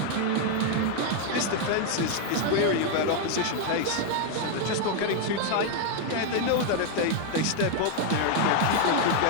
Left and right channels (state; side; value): different; both; correlation 0.00